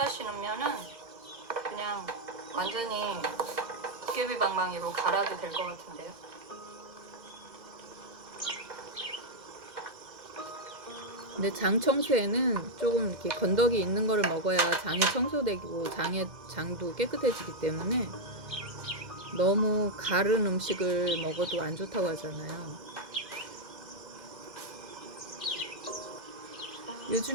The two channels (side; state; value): left; late; 2.1 ms